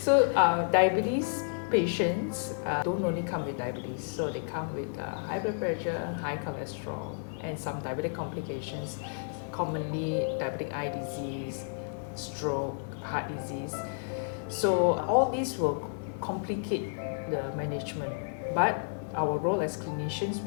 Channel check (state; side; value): silent; right; 56 dB below the other